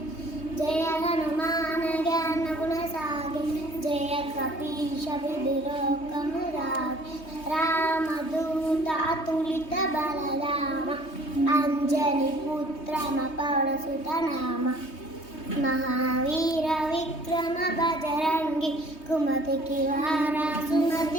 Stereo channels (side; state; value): right; late; 3.2 ms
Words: జయ హనుమాన జ్ఞాన గుణ సాగి జయ కపీశ విధిలోకమురాగి రామదూత అతులిత బలరామ అంజని పుత్రమ పవనసుత నామ మహావీర విక్రమ బజరంగి కుమతికి వారా